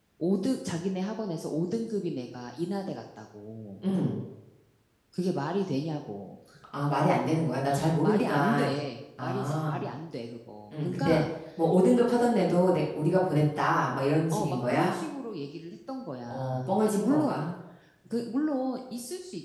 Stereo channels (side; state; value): both; identical; correlation 1.00